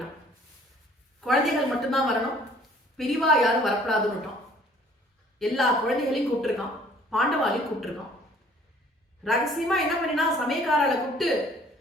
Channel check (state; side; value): normal; both; correlation 0.56